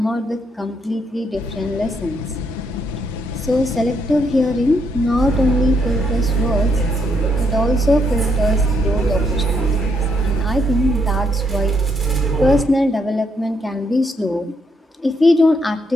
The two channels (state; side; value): normal; both; correlation 0.75